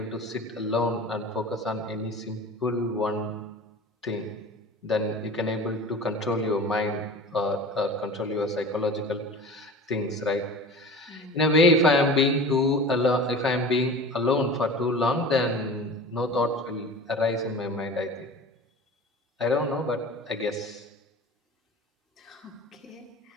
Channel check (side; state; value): both; normal; correlation 0.37